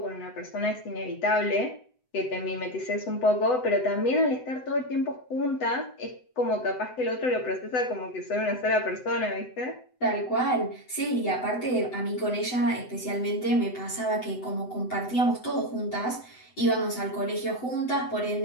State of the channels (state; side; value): late; right; 7.9 ms